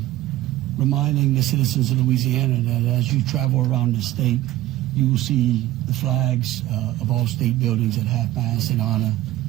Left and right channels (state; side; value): quieter; left; 15.5 dB